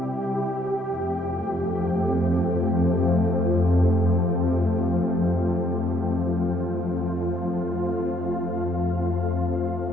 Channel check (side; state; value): both; normal; correlation 0.69